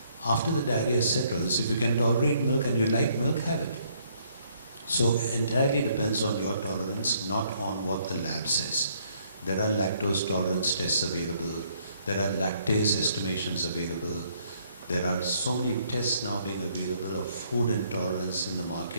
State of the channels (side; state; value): both; inverted; correlation -0.67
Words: After the diarrhea settles, if you can tolerate milk and you like milk, have it. So entirely depends on your tolerance, not on what the lab says. There are lactose tolerance tests available. There are lactase estimations available. There are so many tests now being available of food intolerance in the